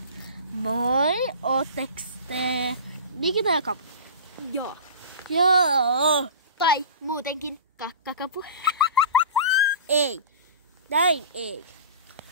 Moi, ootteks te Nikita ja Kapu? Joo. Joo. Tai muutenkin kakkakapu. Ei. Näin ei.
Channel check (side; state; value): both; inverted; correlation -0.35